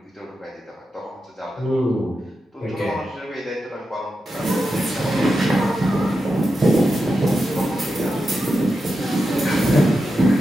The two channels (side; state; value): both; normal; correlation 0.89